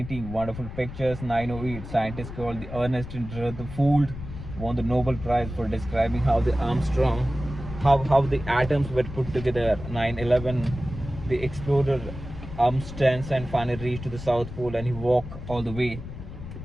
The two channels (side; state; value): left; noise; rumble, 11 dB below the sound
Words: wonderful pictures. 908, scientists called the Ernest Rutherford won the Nobel Prize for describing how the Armstrong, how the atoms were put together. 911, the explorer Amundsen finally reached to the South Pole and he walked all the way.